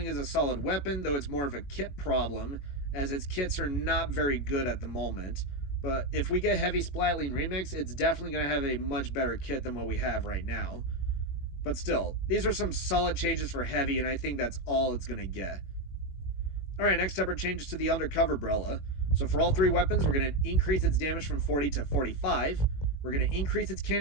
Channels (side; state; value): right; late; 21 ms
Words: is a solid weapon, though it's more of a kit problem, as its kits are not very good at the moment. But if we get heavy splatling remix, it's definitely going to have a much better kit than what we have right now. But still, these are some solid changes for heavy, and I think that's all it's going to get. Alright, next up are changes to the undercover umbrella. So for all 3 weapons, we're going to increase its damage from 40 to 45. We're going to increase its